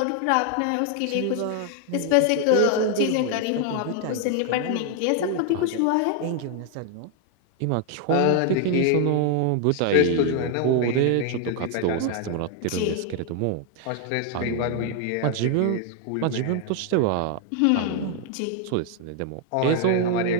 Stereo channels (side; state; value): both; different; correlation 0.00